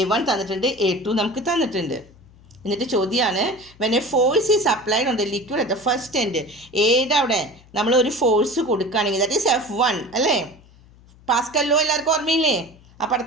തന്നിട്ടുണ്ട്, A2 നമുക്ക് തന്നിട്ടുണ്ട്. എന്നിട്ട് ചോദ്യമാണ് when A force is applied on the liquid at the first end. അവിടെ നമ്മൾ ഒരു ഫോഴ്സ് കൊടുക്കുകയാണെങ്കിൽ ദാറ്റ് ഈസ് F1 അല്ലേ? പാസ്കൽ ലോ എല്ലാവർക്കും ഓർമ്മയില്ലേ? ആ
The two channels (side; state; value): left; noise; hum, 26 dB below the sound